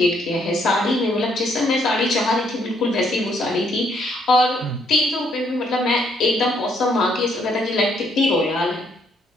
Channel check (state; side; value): normal; both; correlation 0.71